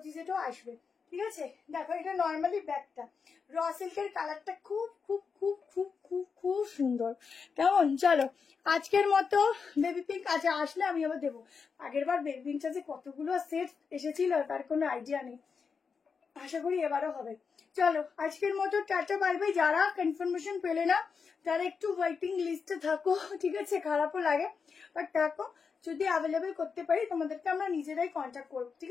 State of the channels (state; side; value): quieter; right; 5.6 dB